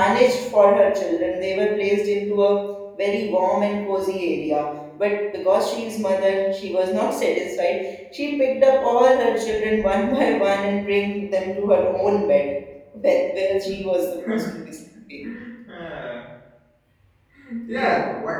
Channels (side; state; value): both; identical; correlation 1.00